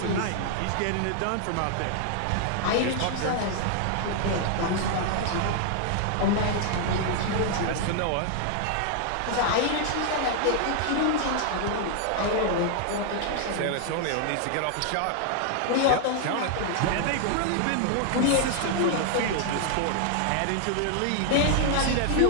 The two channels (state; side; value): different; both; correlation 0.00